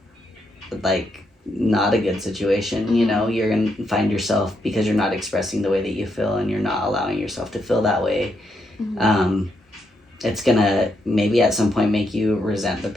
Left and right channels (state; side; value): normal; both; correlation 0.79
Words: like not a good situation, you know. You're gonna find yourself, because you're not expressing the way that you feel and you're not allowing yourself to feel that way, it's gonna maybe at some point make you resent the